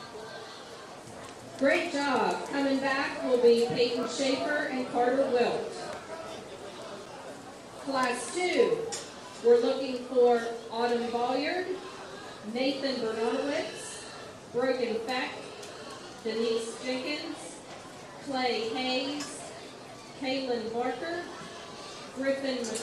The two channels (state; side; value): identical; both; correlation 1.00